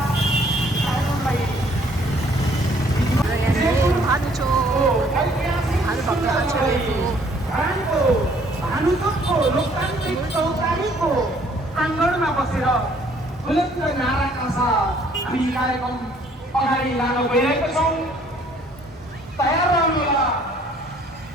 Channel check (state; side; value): normal; both; correlation 0.61